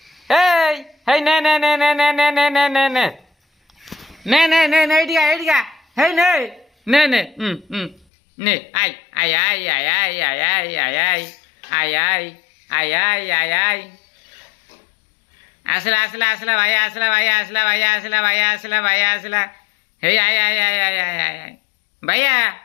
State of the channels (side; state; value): right; drops out; at 8.1 s